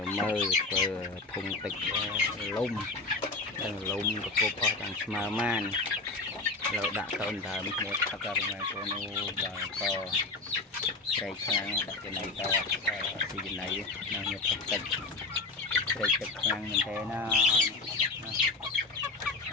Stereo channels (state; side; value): quieter; right; 3.5 dB